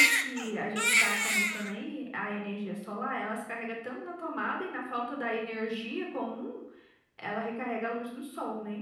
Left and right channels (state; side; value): identical; both; correlation 1.00